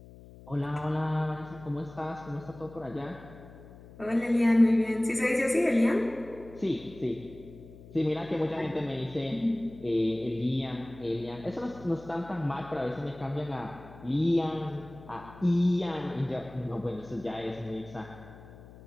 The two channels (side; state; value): left; noise; hum, 19 dB below the sound